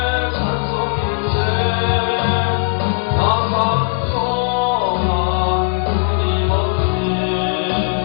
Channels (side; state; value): right; silent; 62 dB below the other